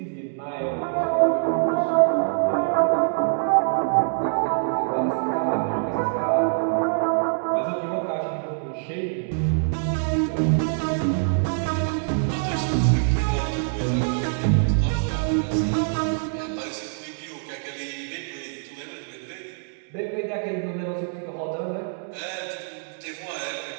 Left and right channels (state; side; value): silent; left; digital silence